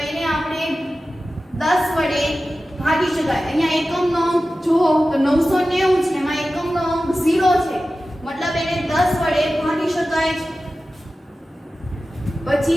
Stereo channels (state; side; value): normal; both; correlation 0.94